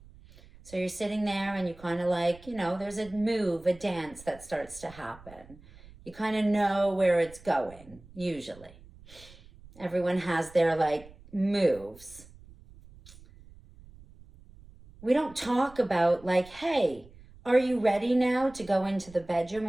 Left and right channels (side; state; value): right; noise; rumble, 22 dB below the sound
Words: So you're sitting there and you kind of like, there's a move, a dance that starts to happen. You kind of know where it's going, usually. Everyone has their like moves. We don't talk about like, hey, are you ready now to go into the bedroom?